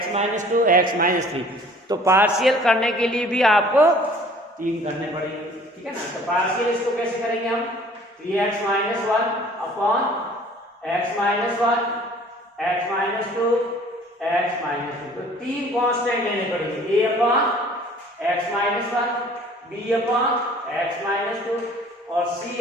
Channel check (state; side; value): normal; both; correlation 0.51